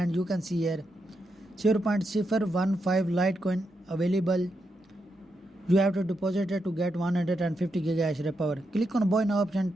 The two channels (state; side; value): normal; both; correlation 0.84